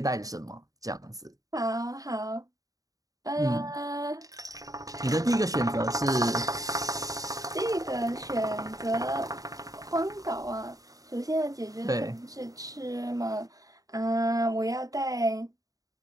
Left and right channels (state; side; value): late; left; 0.17 ms